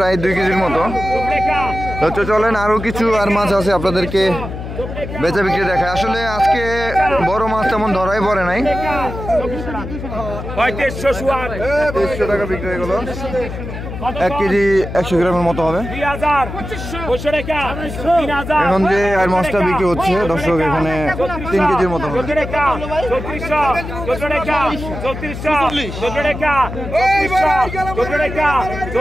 2 কেজির মতো। তো চলেন আরো কিছু আর মাছ আছে আপনাদেরকে বেচা বিক্রি দেখায়। আসলে আজকে বড় মাছ তেমন ধরাই পড়ে নাই। 2300 টাকা বিক্রি হয়ে গেল, 1 কেজি 100 গ্রামের মতো হবে। এখন যে আর মাছটা বিক্রি হচ্ছে দর্শক এখানে 3 কেজির মতো হবে।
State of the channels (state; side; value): noise; left; hum, 8 dB below the sound